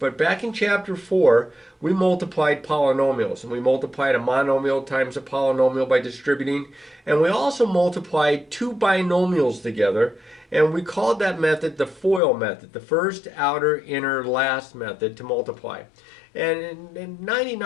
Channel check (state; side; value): drops out; right; at 12.2 s